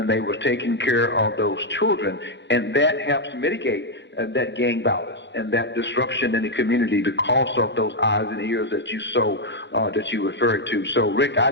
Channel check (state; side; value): late; right; 0.52 ms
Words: they were taking care of those children. And that helps mitigate that gang violence and that disruption in the community because of those eyes and ears that you referred to. So, Rick, I